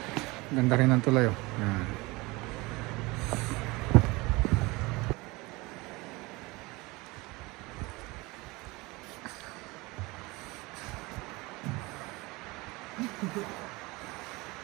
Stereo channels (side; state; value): left; quieter; 23.4 dB